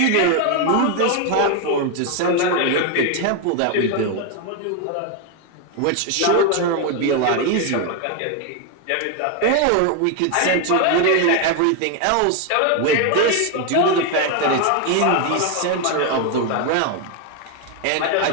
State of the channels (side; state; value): both; different; correlation 0.01